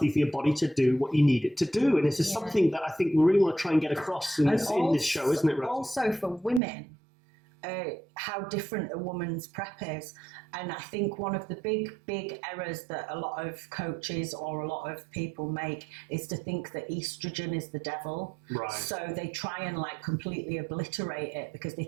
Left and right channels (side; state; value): left; drops out; at 6.6 s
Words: for your body to do what you need it to do, and this is something that I think we really want to try and get across in this show, isn't it, Rosie? Also for women, how different a woman's prep is. And I think one of the big errors that a lot of coaches or a lot of people make is to think that estrogen is the devil. Right. So they try and like completely obliterate it because they